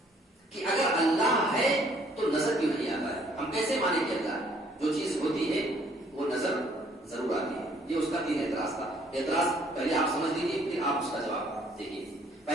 کہ اگر اللہ ہے تو نظر کیوں نہیں آتا ہے؟ ہم کیسے مانیں کہ اللہ جو چیز ہوتی ہے وہ نظر ضرور آتی ہے. یہ اس کا 3 اعتراض تھا. اعتراض پہلے آپ سمجھ لیجیے، پھر آپ اس کا جواب دیکھیے.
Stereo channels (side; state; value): both; normal; correlation 0.62